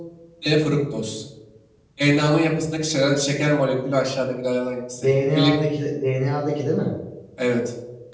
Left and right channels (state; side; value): identical; both; correlation 1.00